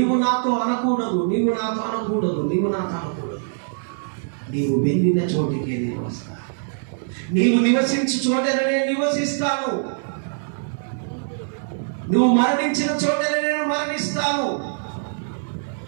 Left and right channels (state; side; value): silent; left; digital silence